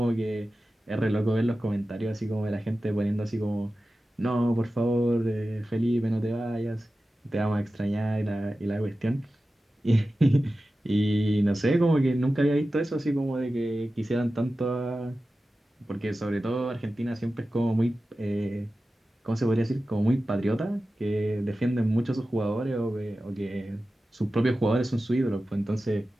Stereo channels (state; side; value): normal; both; correlation 0.94